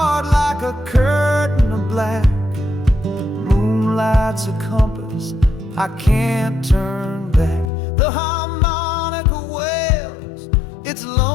like a curtain of black. Moonlight's a compass, I can't turn back. The harmonica wails its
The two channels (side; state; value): right; drops out; at 7.7 s